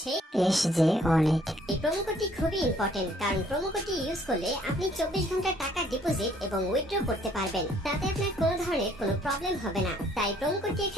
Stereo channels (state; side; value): normal; both; correlation 0.62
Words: SJ অনেক। এই প্রোমো কোডটি খুবই ইম্পর্টেন্ট, কারণ প্রোমো কোডটি ইউজ করলে আপনি 24 ঘন্টা টাকা ডিপোজিট এবং উইথড্র করতে পারবেন। তাতে আপনার কোনো ধরনের কোনো প্রবলেম হবে না। তাই প্রোমো কোডটি